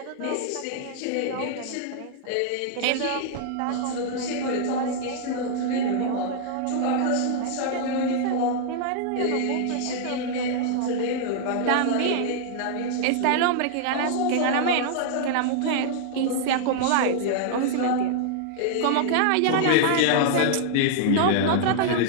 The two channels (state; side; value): different; both; correlation -0.01